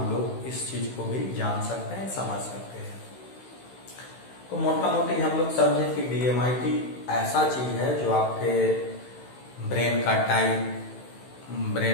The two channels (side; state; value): right; late; 16 ms